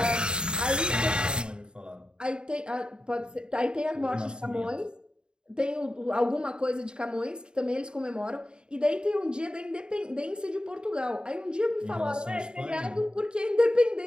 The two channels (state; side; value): late; left; 0.049 ms